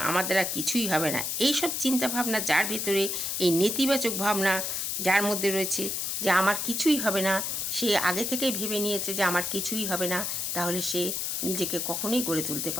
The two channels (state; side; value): noise; left; hiss, 1 dB below the sound